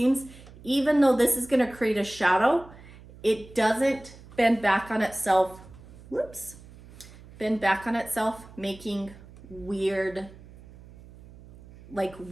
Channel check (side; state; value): right; noise; hum, 20 dB below the sound